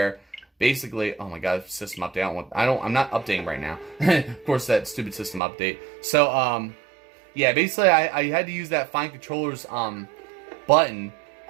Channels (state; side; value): drops out; left; at 5.4 s